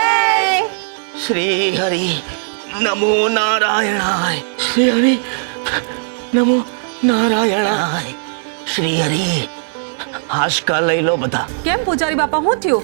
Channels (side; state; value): left; silent; 66 dB below the other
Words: શ્રી હરિ નમો નારાયણાય શ્રી હરિ નમો નારાયણાય શ્રી હરિ હાશકા લઈ લો બધા. કેમ પૂજારી બાપા, શું થયું?